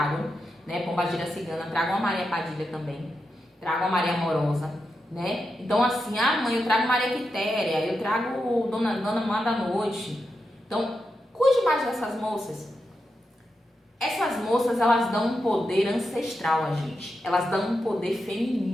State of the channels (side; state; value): both; normal; correlation 0.87